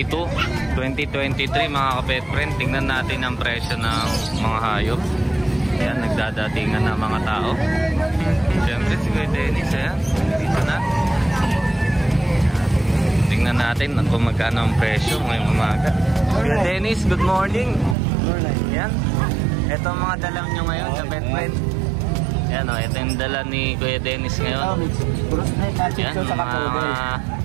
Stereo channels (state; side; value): drops out; left; at 17.9 s